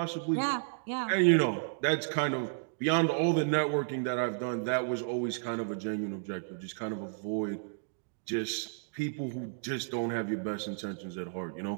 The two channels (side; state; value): left; silent; digital silence